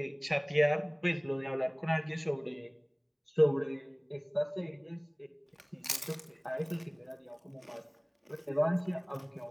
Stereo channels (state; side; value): identical; both; correlation 1.00